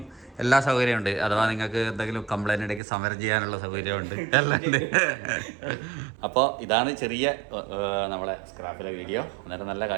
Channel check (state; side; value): drops out; left; at 2.8 s